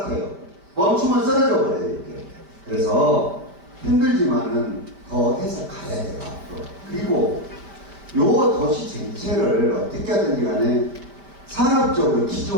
멈추면 쓰러져 버려요, 이렇게. 그래서 힘들지만은 더 해서 가야 돼요, 앞으로. 그리고 요 도시 전체를 어떻게 하든지 간에 산업적으로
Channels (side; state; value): left; late; 5.2 ms